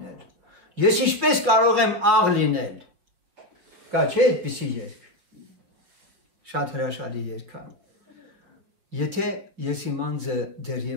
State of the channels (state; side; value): late; left; 5.7 ms